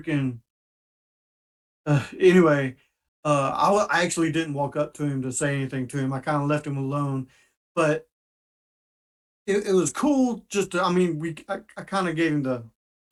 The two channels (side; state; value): both; identical; correlation 1.00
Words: anyway, I actually didn't walk up to him to say anything to him. I kind of left him alone, but it was cool. Just to, I mean, I kind of gave him the